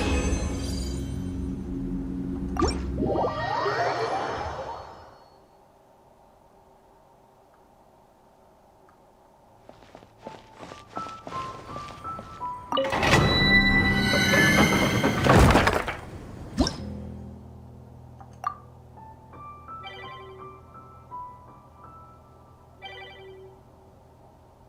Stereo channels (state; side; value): identical; both; correlation 1.00